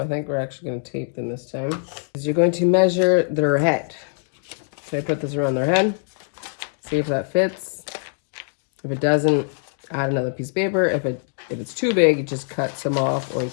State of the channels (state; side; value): silent; right; digital silence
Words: think we're actually going to tape them this time. You're going to measure their head. So I put this around their head. See if that fits. If it doesn't, add another piece of paper. If it's too big, you just cut some off, or you